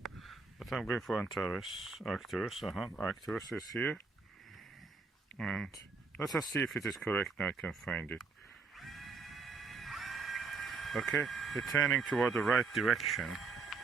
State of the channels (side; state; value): left; quieter; 4.5 dB